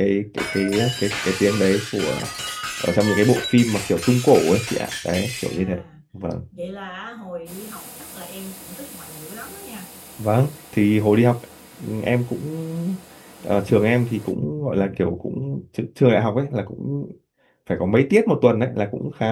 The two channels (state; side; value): identical; both; correlation 1.00